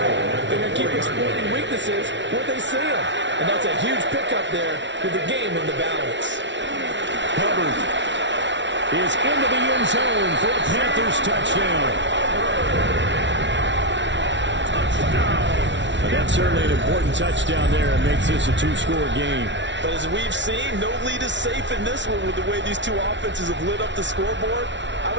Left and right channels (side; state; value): left; late; 0.53 ms